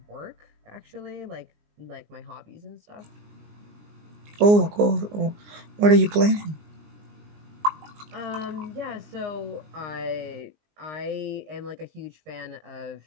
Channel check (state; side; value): late; left; 19 ms